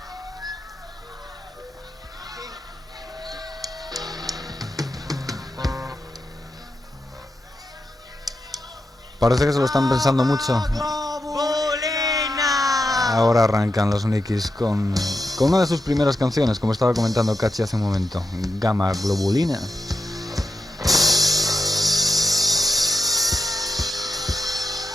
Parece que se lo están pensando mucho. Globulina. Ahora arrancan los Nikis con una de sus primeras canciones, como estaba comentando Cachi hace un momento, Gamma Globulina.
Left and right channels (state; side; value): normal; both; correlation 0.87